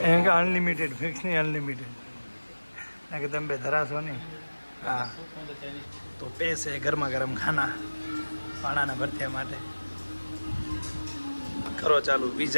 એમ કે અનલિમિટેડ ફિક્સ નહીં અનલિમિટેડ ના કે તમે બે ધરાશો નહીં. હા તો પૈસે ગરમા ગરમ ખાના પાણાના ભરત્યા માટે કરો ચાલુ.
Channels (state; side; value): inverted; both; correlation -1.00